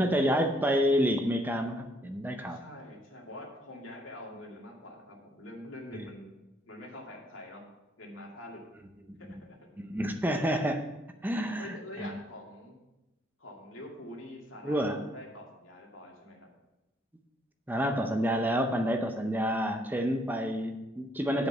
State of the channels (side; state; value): both; normal; correlation 0.68